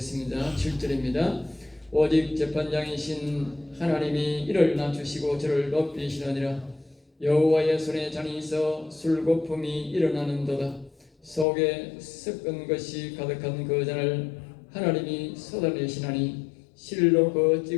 7절입니다. 오직 재판장이신 하나님이 이를 낮추시고 저를 높이시느니라. 여호와의 손에 잔이 있어 술거품이 일어나는도다. 속에 섞은 것이 가득한 그 잔을 하나님이 쏟아내시나니 실로 그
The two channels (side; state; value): right; drops out; at 11.5 s